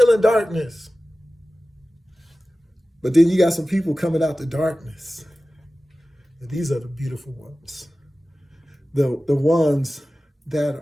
in darkness. But then you got some people coming out the darkness. And these are the beautiful ones. The ones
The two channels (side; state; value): both; normal; correlation 0.96